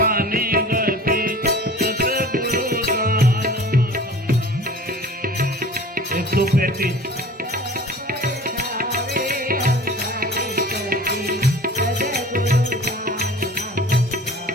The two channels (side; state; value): both; normal; correlation 0.42